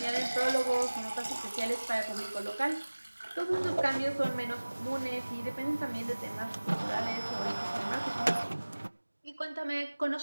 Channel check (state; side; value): inverted; both; correlation -1.00